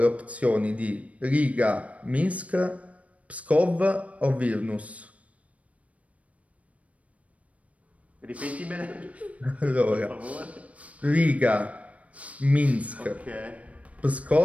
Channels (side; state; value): left; late; 0.066 ms